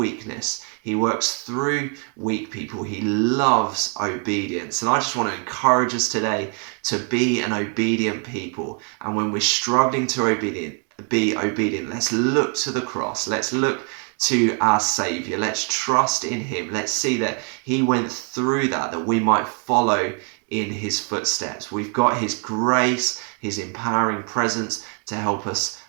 He works through weak people. He loves obedience. And I just want to encourage us today to be an obedient people. And when we're struggling to be obedient, let's look to the cross. Let's look to our Saviour. Let's trust in Him. Let's see that He went through that we might follow in His footsteps. We've got His grace, His empowering presence to help us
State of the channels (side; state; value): left; quieter; 38.9 dB